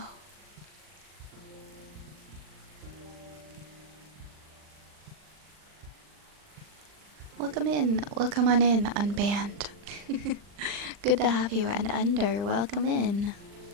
Welcome in. Welcome on in, Unbanned. Good to have you. And Under, welcome in.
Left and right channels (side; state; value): left; late; 40 ms